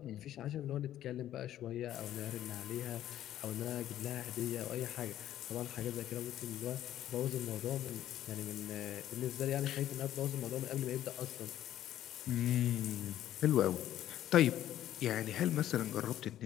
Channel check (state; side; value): quieter; right; 12.3 dB